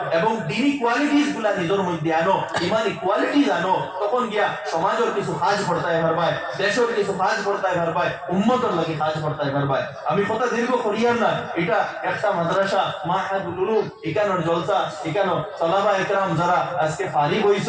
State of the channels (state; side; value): identical; both; correlation 1.00